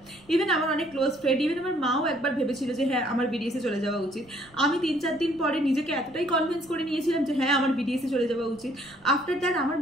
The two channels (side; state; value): right; noise; rumble, 28 dB below the sound